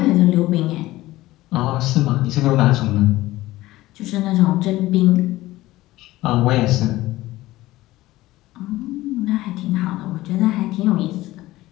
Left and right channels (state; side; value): quieter; right; 17.3 dB